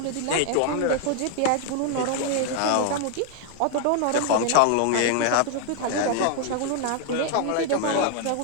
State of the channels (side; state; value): both; different; correlation 0.00